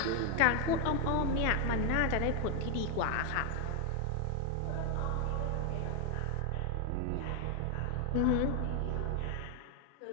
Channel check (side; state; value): both; different; correlation 0.01